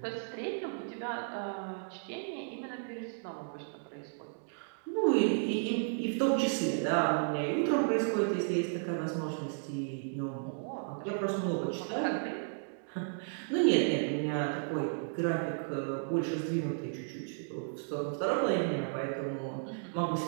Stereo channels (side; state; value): left; silent; digital silence